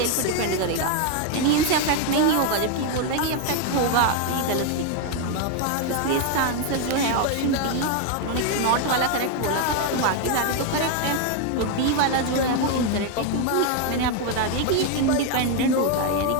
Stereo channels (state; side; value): different; both; correlation 0.01